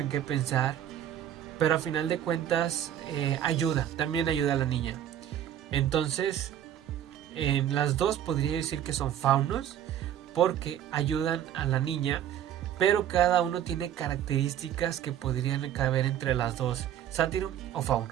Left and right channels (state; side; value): quieter; left; 10.7 dB